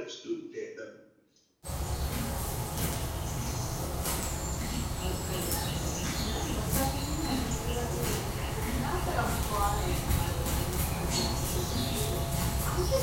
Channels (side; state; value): both; identical; correlation 1.00